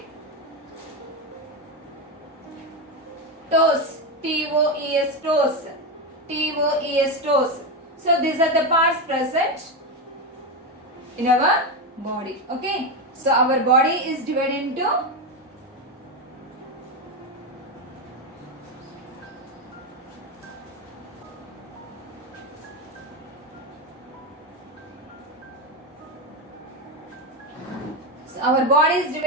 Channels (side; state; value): both; normal; correlation 0.11